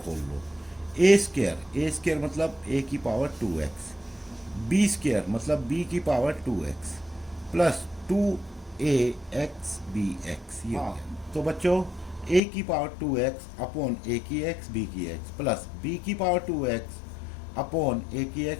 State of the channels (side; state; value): right; drops out; at 12.4 s